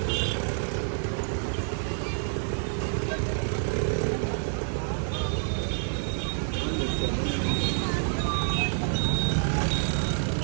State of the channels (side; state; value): left; silent; 59 dB below the other